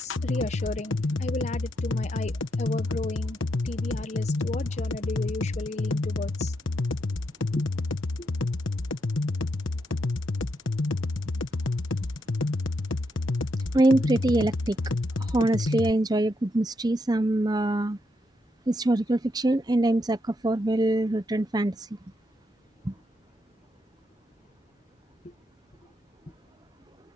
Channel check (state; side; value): normal; both; correlation 0.80